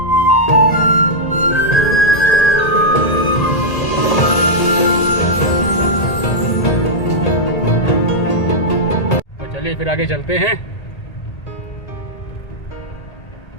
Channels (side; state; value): right; late; 1.8 ms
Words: तो चलिए फिर आगे चलते हैं,